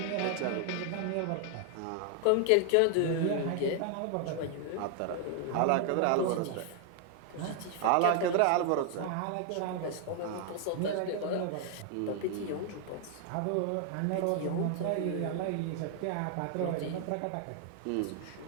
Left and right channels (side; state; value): both; different; correlation 0.00